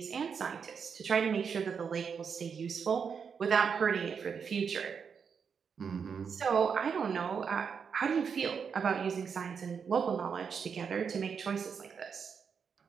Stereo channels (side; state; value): left; quieter; 6.4 dB